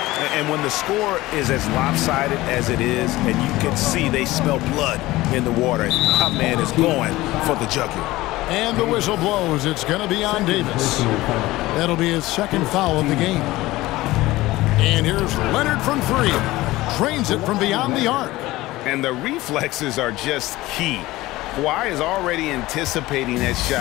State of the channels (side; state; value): right; quieter; 18.3 dB